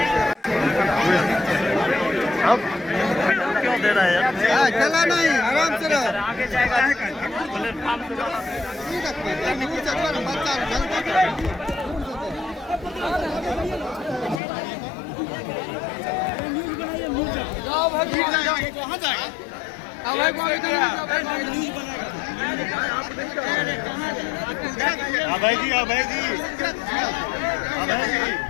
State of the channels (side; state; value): right; drops out; at 14.4 s